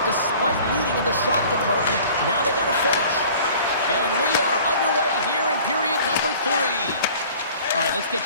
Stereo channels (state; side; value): inverted; both; correlation -0.48